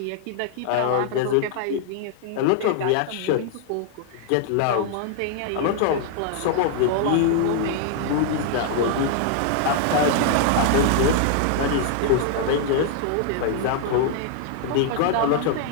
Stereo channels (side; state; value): both; different; correlation 0.00